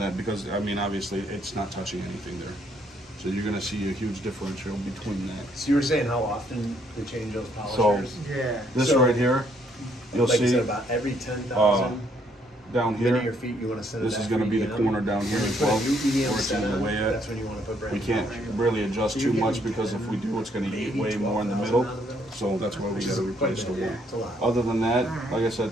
because, I mean, obviously, it's not touching anything there. So you're gonna see a huge differential between that. So you were saying how often they change those So polishers? Yeah. this So- right here, you'll Like you see said, about every 10,000 down linear here, feet, you want to send it this is back gonna for be the EM. corner down here When you as put well, a new EM where it's set in the on, way at. that's when you want to put brand We new can't polishers. really adjust So too you're much, getting because if we do, it's gonna eat maybe way more in the 12,000 middle. out of those? So that's why we gotta replace the one. It's a lot. Other than that, like I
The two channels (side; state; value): both; normal; correlation 0.69